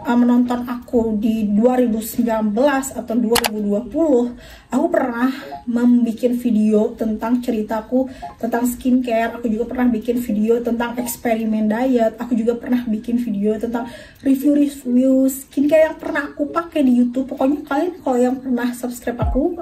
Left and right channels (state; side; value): identical; both; correlation 1.00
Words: aku di 2019 atau 2020, aku pernah membuat video tentang ceritaku tentang skincare. Aku juga pernah bikin video tentang eksperimen diet. Aku juga pernah bikin video tentang review skincare yang pernah aku pakai di YouTube. Pokoknya kalian kalau yang pernah subscribe aku